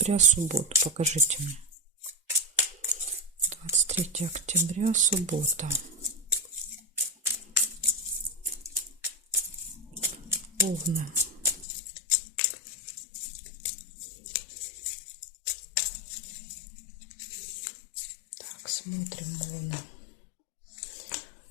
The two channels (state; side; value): drops out; right; at 11.7 s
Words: субботу. Покажите мне. 23 октября, суббота. Овны. Так, смотрим Овны.